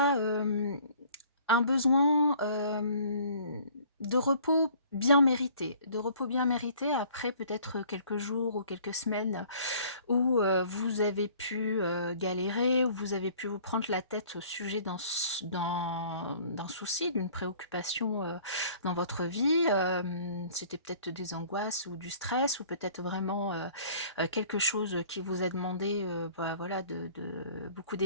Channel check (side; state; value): both; inverted; correlation -0.53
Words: un besoin de repos bien mérité. De repos bien mérité après peut-être quelques jours ou quelques semaines où vous avez pu galérer, où vous avez pu vous prendre la tête au sujet d'un souci, d'une préoccupation dans votre vie. C'était peut-être des angoisses ou du stress, ou peut-être vraiment quelque chose qui vous a demandé voilà, beaucoup